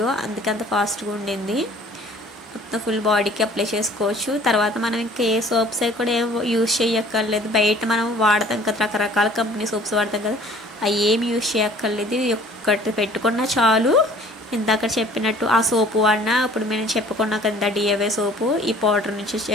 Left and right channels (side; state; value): both; normal; correlation 0.52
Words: అందుకే అంత ఫాస్ట్గా ఉండింది. మొత్తం ఫుల్ బాడీకి అప్లై చేసుకోవచ్చు. తర్వాత మనం ఇంకా ఏ సోప్స్ అవి కూడా ఏం యూజ్ చేయక్కర్లేదు. బయట మనం వాడతాం కదా, రకరకాల కంపెనీ సోప్స్ వాడతాం కదా, అవి ఏమి యూజ్ చేయక్కర్లేదు. ఒక్కటి పెట్టుకున్నా చాలు. ఇందాక చెప్పినట్టు ఆ సోపు వాడినా, ఇప్పుడు మేము చెప్పుకున్నాం కదా డిఐవై సోపు, ఈ పౌడర్ నుంచి